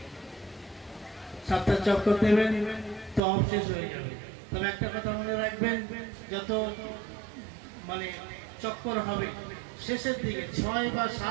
সাতটা চক্কর দেবেন, তওয়াফ শেষ হয়ে যাবে। তবে একটা কথা মনে রাখবেন, যত মানে চক্কর হবে শেষের দিকে 6 বা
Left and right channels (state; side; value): drops out; left; at 3.2 s